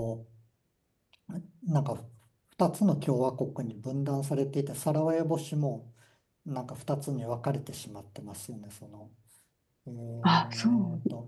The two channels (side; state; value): both; identical; correlation 1.00